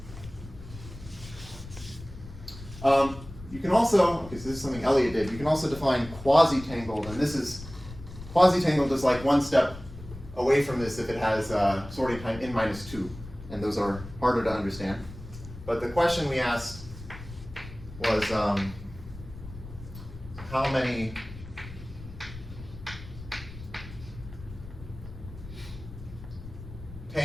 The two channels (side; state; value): left; noise; rumble, 14 dB below the sound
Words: You can also, okay, so this is something Elliot did, you can also define quasi-tangled, and this is, quasi-tangled is like one step away from this if it has sorting time n-2, and those are harder to understand. But the question we asked was how many